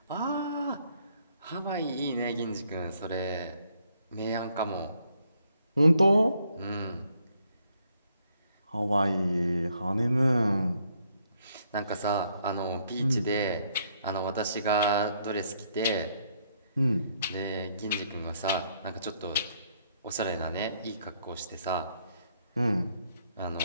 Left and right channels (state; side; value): inverted; both; correlation -0.70